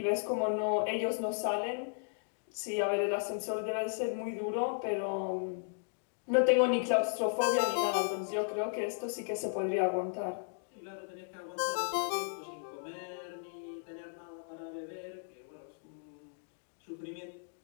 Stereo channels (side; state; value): right; silent; digital silence